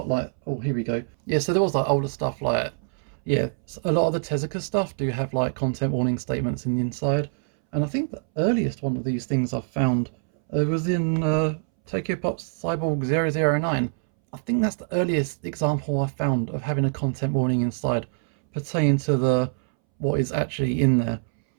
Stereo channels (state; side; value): silent; left; 62 dB below the other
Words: like, oh, here we go. Yeah, so there was like older stuff like, yeah, a lot of the Tezuka stuff do have like content warning statements in the inside. And I think the earliest one of these things I've found was in Tokyo Pop's Cyborg 009. I think that's the earliest example I found of having a content warning inside pertaining to what is actually in there.